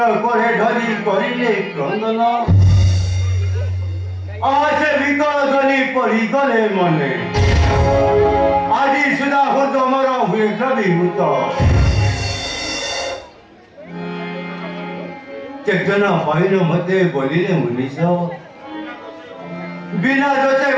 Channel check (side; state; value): both; identical; correlation 1.00